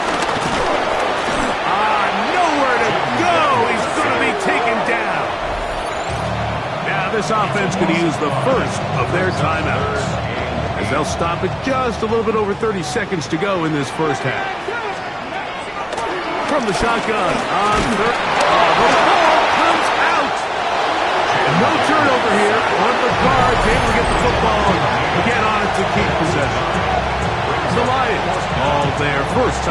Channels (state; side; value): identical; both; correlation 1.00